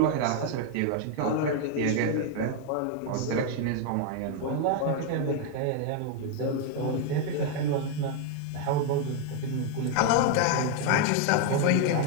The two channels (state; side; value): different; both; correlation 0.01